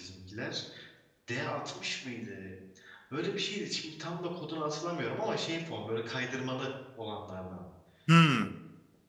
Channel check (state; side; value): identical; both; correlation 1.00